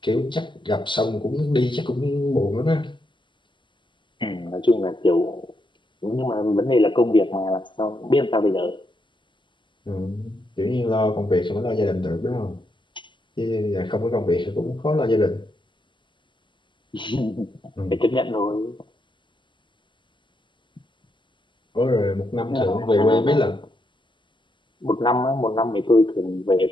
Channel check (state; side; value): late; right; 0.23 ms